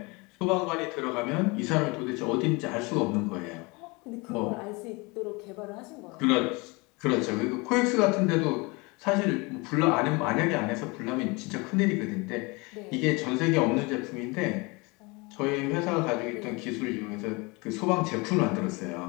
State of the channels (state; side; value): quieter; right; 26.9 dB